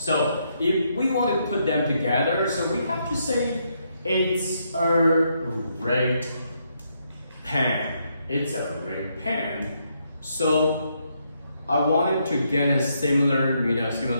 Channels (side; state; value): both; inverted; correlation -0.77